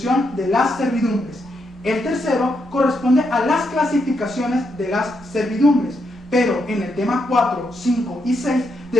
de las servidumbres. El tercero corresponde a las clasificaciones de las servidumbres. Pero en el tema 4, 5 y 6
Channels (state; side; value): normal; both; correlation 0.80